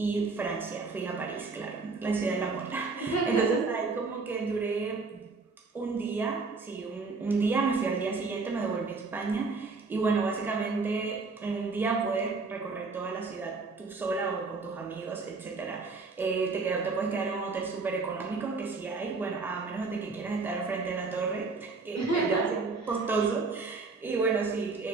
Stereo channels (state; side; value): quieter; left; 4.1 dB